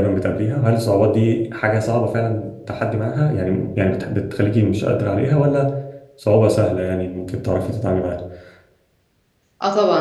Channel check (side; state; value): both; identical; correlation 1.00